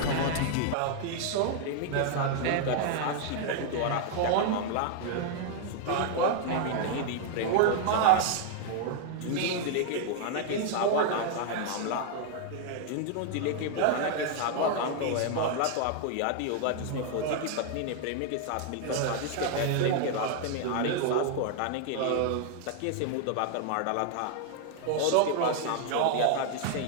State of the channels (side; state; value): both; different; correlation 0.00